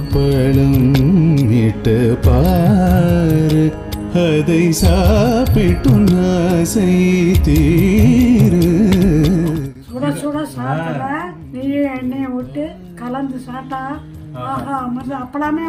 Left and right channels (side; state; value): both; identical; correlation 1.00